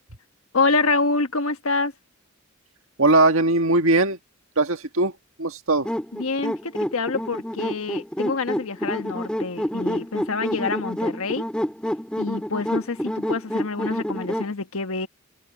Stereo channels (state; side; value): normal; both; correlation 0.01